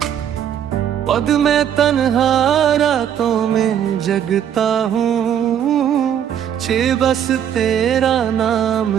पद में तन्हा रातों में जगता हूँ, छे बस तेरा नाम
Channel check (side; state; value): left; quieter; 9.4 dB